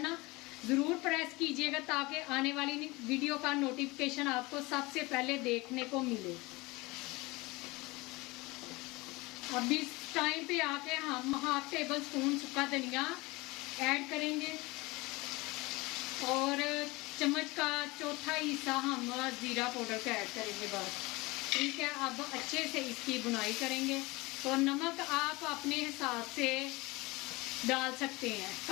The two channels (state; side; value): quieter; right; 23.1 dB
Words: ना ज़रूर प्रेस कीजिएगा, ताकि आने वाली वीडियो का नोटिफिकेशन आपको सबसे पहले देखने को मिले। अब इस टाइम पे आके हम ½ टेबल स्पून सूखा धनिया ऐड करेंगे, और चम्मच का चौथा हिस्सा हम ज़ीरा पाउडर का ऐड करेंगे, बस, ठीक है। अब अच्छे से इसकी बुनाई करेंगे। तो नमक आप अपने हिसाब से डाल सकते हैं,